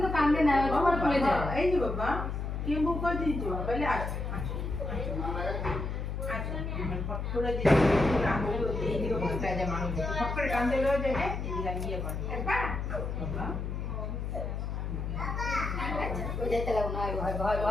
তো কান্দে না তোমার খুলে যায় এই যে বাবা কে বুক করে দিয়েছো তাহলে আচ্ছা আচ্ছা ফট করে দিয়েছো আঙুল এই দিকে বলতে যায় মানুষ ফট করে কান্দে লয়ে যায় এই দিকে নিয়ে করে বাবা ওই যেতে লাগো না হয়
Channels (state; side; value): noise; left; hum, 3 dB below the sound